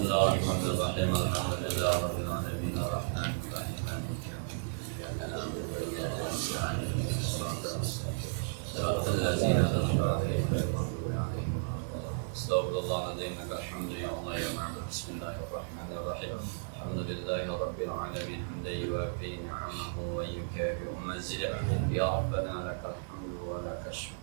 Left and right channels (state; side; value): silent; left; digital silence